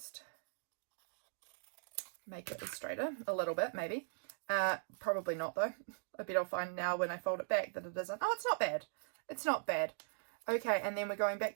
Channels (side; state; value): left; silent; digital silence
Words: make it straighter a little bit, maybe. Probably not though. I bet I'll find now when I fold it back that it isn't. Oh, it's not bad. It's not bad. Okay, and then we're going back